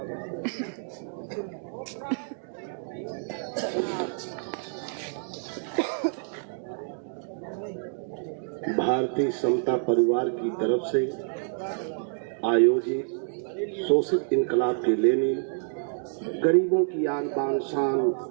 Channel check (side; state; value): left; silent; digital silence